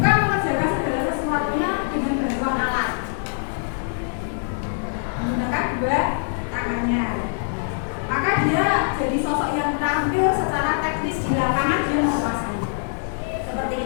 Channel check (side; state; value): right; silent; 58 dB below the other